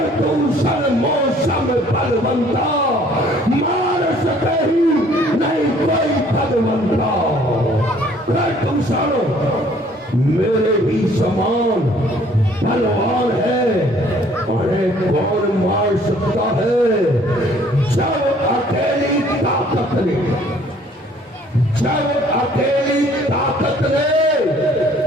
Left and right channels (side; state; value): both; normal; correlation 0.58